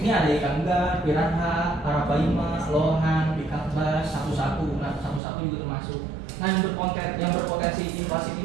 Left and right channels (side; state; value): left; drops out; at 5.2 s